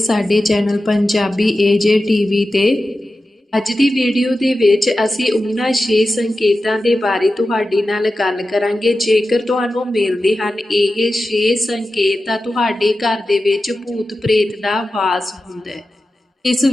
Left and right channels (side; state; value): both; normal; correlation 0.93